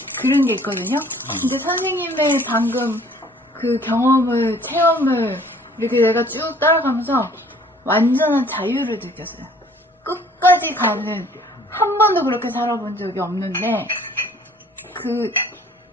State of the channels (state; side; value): normal; both; correlation 0.55